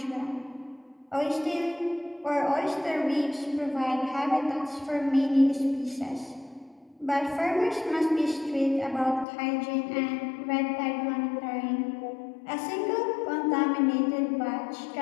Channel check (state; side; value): drops out; right; at 9.2 s